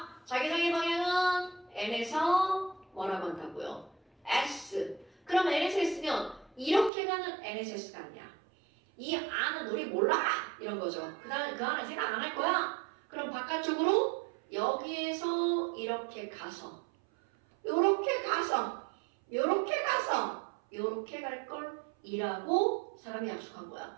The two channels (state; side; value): drops out; left; at 6.9 s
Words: 자기장의 방향은 N에서 뭐라고 한다고요? S. 그럼 N에서 S면 이렇게 가는 NSS가 아니야. 이 안은 우리 몰라! 이런 거죠. 그 안은 생각 안 할 거야. 그럼 바깥쪽으로 여기에서 이렇게 가서 요렇게 갈 걸 이라고 사람이 약속한 거야.